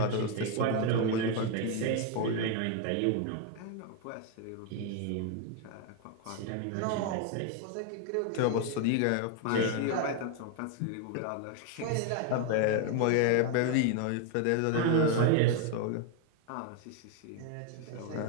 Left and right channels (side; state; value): both; different; correlation 0.01